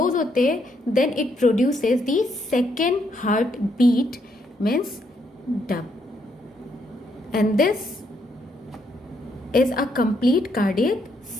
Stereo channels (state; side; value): normal; both; correlation 0.75